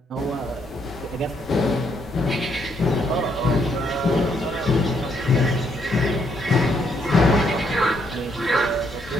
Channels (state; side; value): normal; both; correlation 0.73